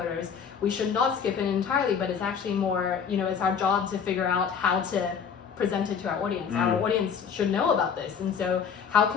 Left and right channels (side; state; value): right; quieter; 6.9 dB